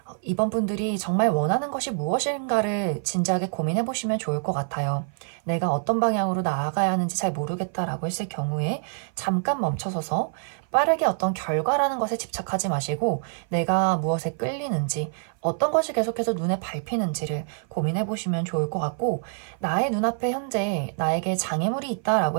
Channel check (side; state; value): left; silent; 56 dB below the other